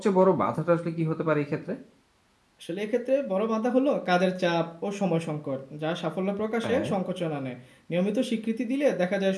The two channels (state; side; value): identical; both; correlation 1.00